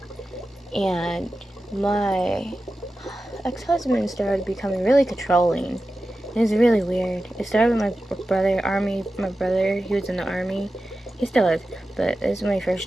and my ex-husband started becoming really controlling. It was really weird. It started with my brother, he was in the army. He still is, but this is when he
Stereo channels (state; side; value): normal; both; correlation 0.93